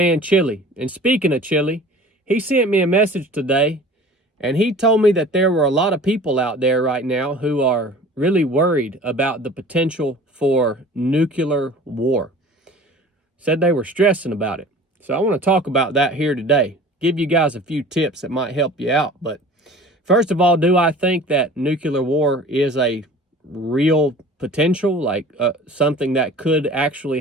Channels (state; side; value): normal; both; correlation 0.44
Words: Chili. And speaking of Chili, he sent me a message today, and he told me that there were a lot of people out there right now who are really worried about the potential for nuclear war. Said they were stressing about it. So I want to talk about that here today. Give you guys a few tips that might help you out. But first of all, do I think that nuclear war is a real potential, like something that could actually